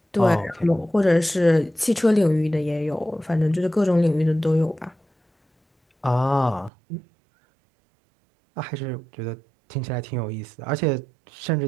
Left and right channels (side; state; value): left; drops out; at 6.7 s